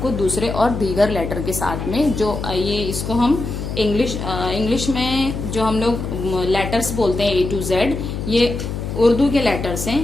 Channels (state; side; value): noise; left; hum, 5 dB below the sound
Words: दूसरे और दीगर लेटर के साथ में, जो ये इसको हम इंग्लिश में जो हम लोग लेटर्स बोलते हैं A to Z, ये उर्दू के लेटर्स